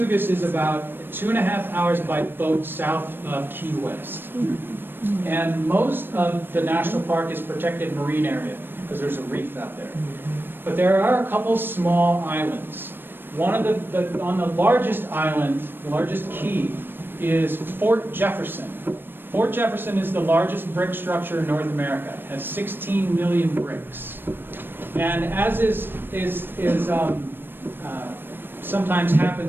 is about 2.5 hours by boat south of Key West. And most of the national park is protected marine area because there's a reef out there. But there are a couple small islands. One of on the largest island, the largest key, is Fort Jefferson. Fort Jefferson is the largest brick structure in North America. It has 16 million bricks. And as sometimes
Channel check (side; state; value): left; late; 0.097 ms